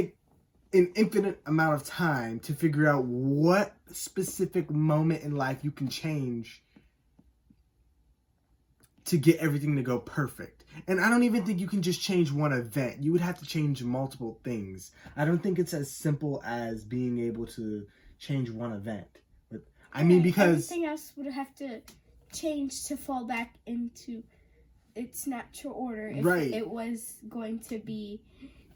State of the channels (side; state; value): both; identical; correlation 1.00